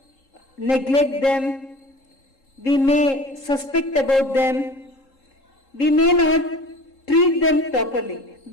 neglect them, we may suspect about them, we may not treat them properly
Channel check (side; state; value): right; late; 3.7 ms